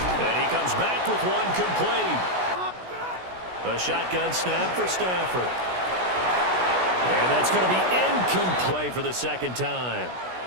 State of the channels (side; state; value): left; late; 16 ms